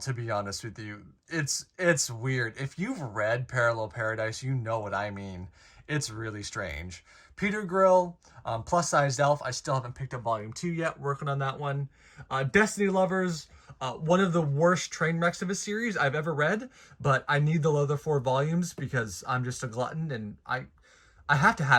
be honest with you. It's weird. If you've read Parallel Paradise, you know what I mean. It's really strange. Peter Grill, Plus Sized Elf, I still haven't picked up volume 2 yet, working on that one. Destiny Lovers, one of the worst train wrecks of a series I've ever read, but I need the other 4 volumes because I'm just a glutton and I have to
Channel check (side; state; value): both; identical; correlation 1.00